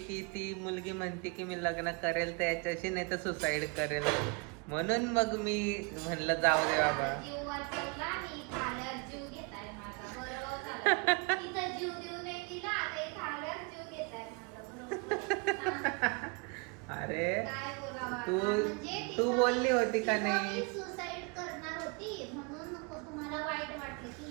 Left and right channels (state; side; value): quieter; left; 31.5 dB